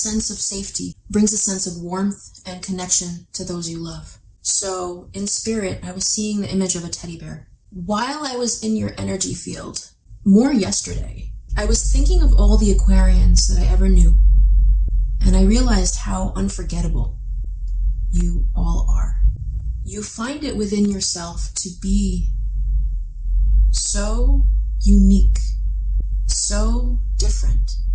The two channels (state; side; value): identical; both; correlation 1.00